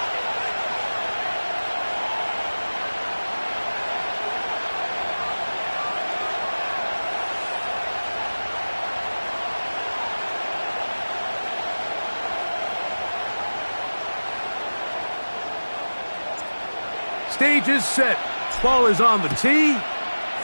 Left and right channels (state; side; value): inverted; both; correlation -1.00